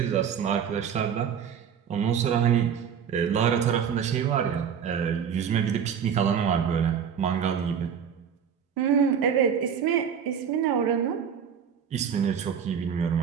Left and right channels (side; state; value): left; quieter; 7.8 dB